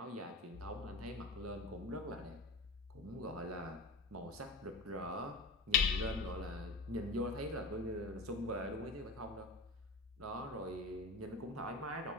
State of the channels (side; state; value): right; quieter; 3.0 dB